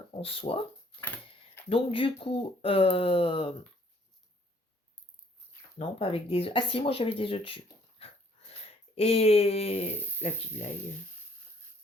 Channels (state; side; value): normal; both; correlation 0.62